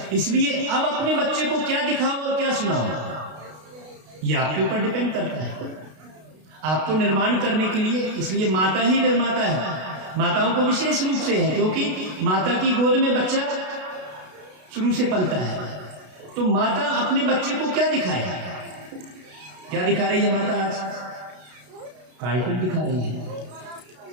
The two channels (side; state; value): left; late; 32 ms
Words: इसलिए अब अपने बच्चे को क्या दिखाओ और क्या सुनाओ, ये आपके ऊपर डिपेंड करता है। आपको निर्माण करने के लिए, इसलिए माता ही निर्माता है। माताओं को विशेष रूप से है, क्योंकि माता की गोद में बच्चा शुरू से पलता है। तो माता अपने बच्चे को क्या दिखाए? क्या दिखा रही है माता आज? कार्टून दिखा रही है।